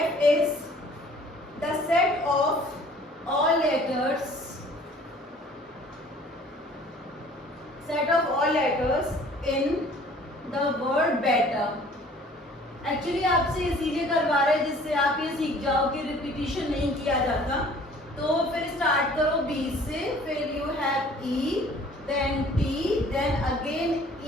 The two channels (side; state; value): both; normal; correlation 0.52